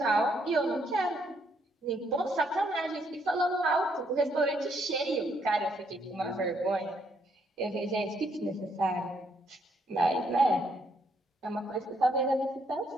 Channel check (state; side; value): normal; both; correlation 0.72